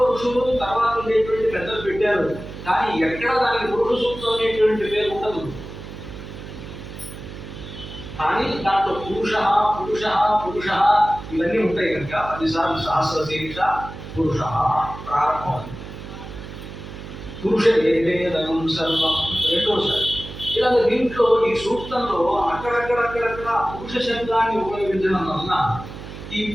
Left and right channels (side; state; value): right; noise; hum, 12 dB below the sound